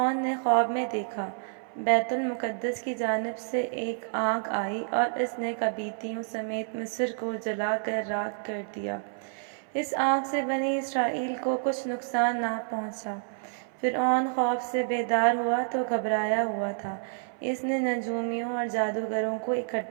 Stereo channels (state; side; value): silent; left; 57 dB below the other